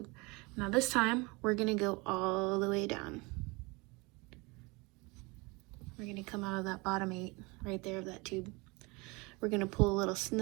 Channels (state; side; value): quieter; left; 26.4 dB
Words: Now this time, we're gonna go all the way down. We're gonna come out of that bottom 8, right there of that tube. We're gonna pull a little